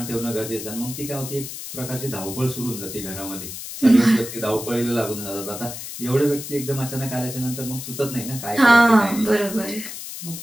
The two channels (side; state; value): left; noise; hiss, 9 dB below the sound